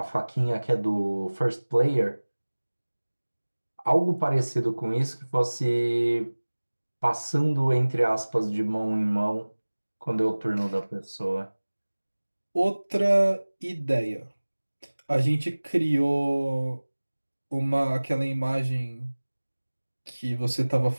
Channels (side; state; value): both; inverted; correlation -1.00